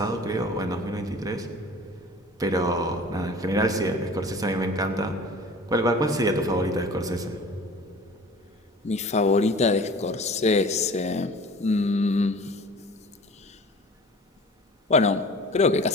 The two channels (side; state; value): both; normal; correlation 0.43